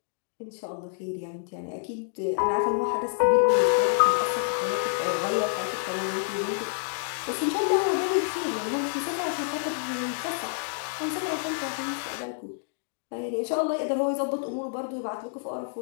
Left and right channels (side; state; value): right; silent; digital silence